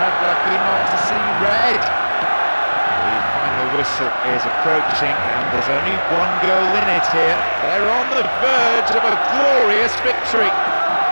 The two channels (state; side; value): inverted; both; correlation -1.00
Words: lucky not to see red. The final whistle is approaching and there's only one goal in it here. They're on the verge of a glorious victory.